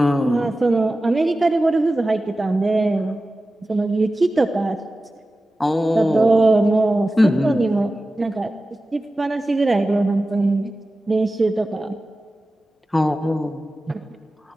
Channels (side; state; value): both; normal; correlation 0.95